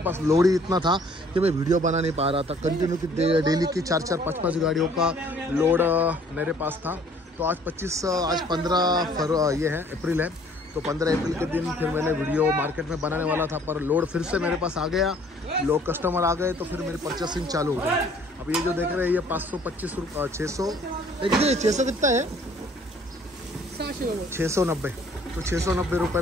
लोड ही इतना था कि मैं वीडियो बना नहीं पा रहा था। कंटिन्यू की डेली की 4-4, 5-5 गाड़ियों का लोड मेरे पास था। तो आज 15 ये है अप्रैल है, तो 15 अप्रैल के दिन फिर मैंने वीडियो मार्केट में बनाने वाला था, पर लोड फिर से मेरे पास आ गया, लोग कस्टमर आ गए तो फिर मेरी परचेसिंग चालू हो गई। अब ये जो देख रहे हैं ये 525 रुपये 600 कितना है 690। तो 690 रुपये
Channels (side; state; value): both; normal; correlation 0.57